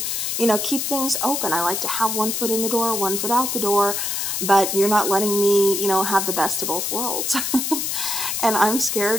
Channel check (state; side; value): noise; left; hiss, 1 dB below the sound